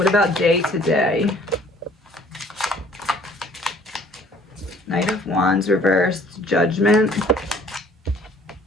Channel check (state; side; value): normal; both; correlation 0.56